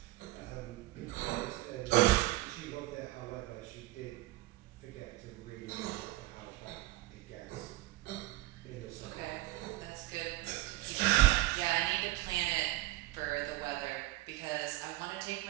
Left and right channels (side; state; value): left; quieter; 18.2 dB